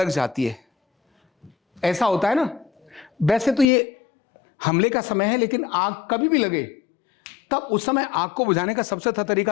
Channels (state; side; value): drops out; right; at 3.7 s